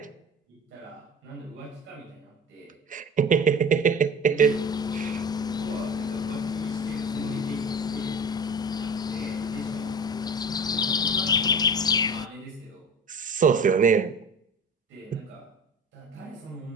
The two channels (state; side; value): normal; both; correlation 0.35